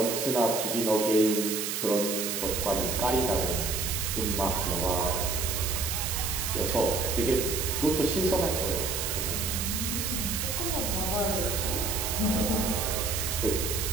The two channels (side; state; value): right; noise; hiss, 2 dB below the sound